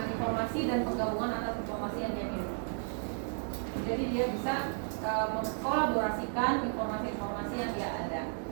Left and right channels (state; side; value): silent; left; 55 dB below the other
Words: informasi dan penggabungan atas informasi yang dia miliki. Jadi dia bisa mengkolaborasikan informasi-informasi yang dia ada.